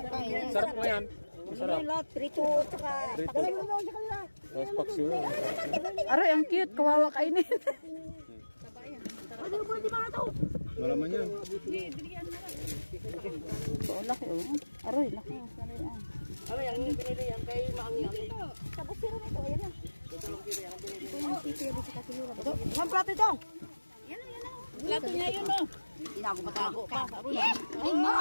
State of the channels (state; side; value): inverted; both; correlation -1.00